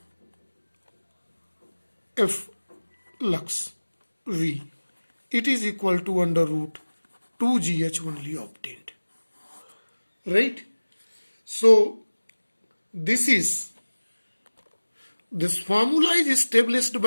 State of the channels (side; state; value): both; inverted; correlation -1.00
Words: F lux V, it is equal to under root 2GH only obtained. Right? So this formula is established